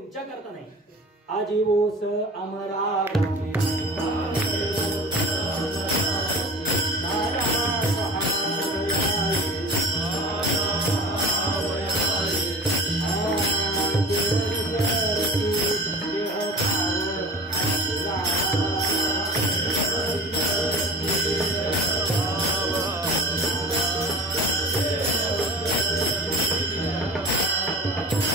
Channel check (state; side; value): normal; both; correlation 0.36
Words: करता नाही. आजीवोस अमरा